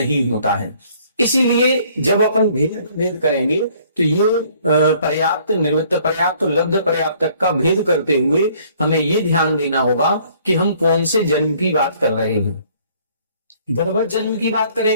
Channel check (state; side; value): inverted; both; correlation -0.60